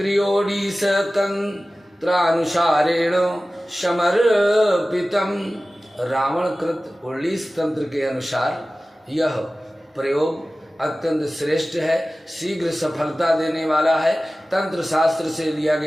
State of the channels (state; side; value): normal; both; correlation 0.96